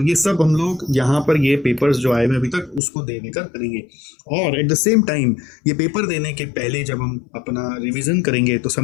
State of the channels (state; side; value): drops out; right; at 2.8 s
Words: ये सब हम लोग यहाँ पर ये पेपर्स जो आए हुए अभी तक उसको दे देकर करेंगे। और एट द सेम टाइम ये पेपर देने के पहले जब हम अपना रिवीजन करेंगे तो